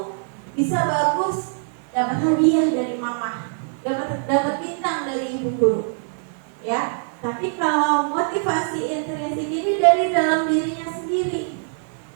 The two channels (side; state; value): left; silent; digital silence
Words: bisa bagus, dapat hadiah dari mama, dapat bintang dari ibu guru, ya. Tapi kalau motivasi intrinsik ini dari dalam dirinya sendiri.